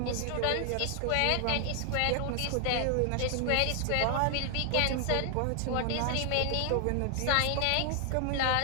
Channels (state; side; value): different; both; correlation 0.00